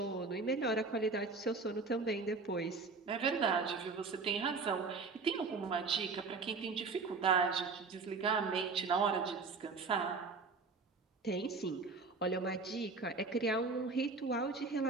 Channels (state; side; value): quieter; left; 4.3 dB